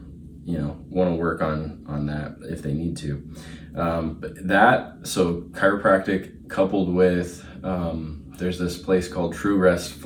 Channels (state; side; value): identical; both; correlation 1.00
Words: to work on that if they need to. So chiropractic coupled with, there's this place called True Rest